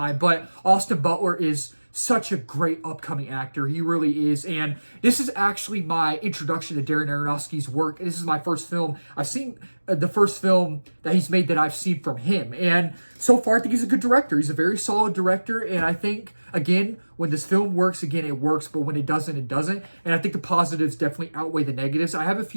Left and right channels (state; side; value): inverted; both; correlation -1.00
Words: but Austin Butler is such a great upcoming actor. He really is, and this is actually my introduction to Darren Aronofsky's work. This is my first film I've seen, the first film that he's made that I've seen from him, and so far I think he's a good director. He's a very solid director, and I think, again, when this film works, again, it works, but when it doesn't, it doesn't, and I think the positives definitely outweigh the negatives. I have a